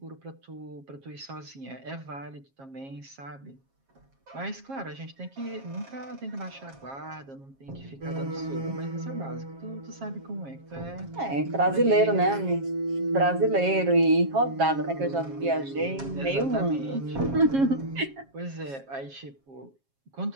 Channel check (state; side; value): late; left; 7.4 ms